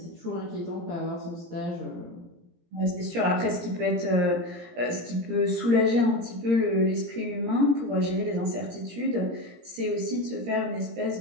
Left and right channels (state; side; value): late; left; 17 ms